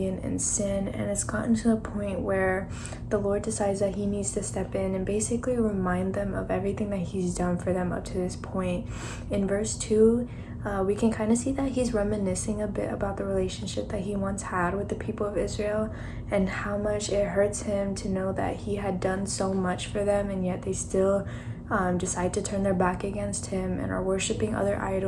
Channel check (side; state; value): both; identical; correlation 1.00